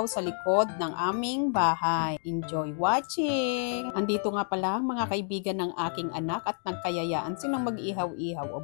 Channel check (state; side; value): silent; right; 58 dB below the other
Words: sa likod ng aming bahay. Enjoy watching! Andito nga pala mga kaibigan ng aking anak at nagkayayaan silang mag-ihaw-ihaw o